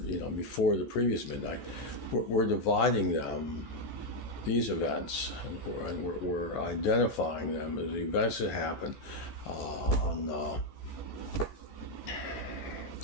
before the previous midnight. We're dividing them, these events, and we're identifying them as the events that happened on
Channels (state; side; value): late; right; 14 ms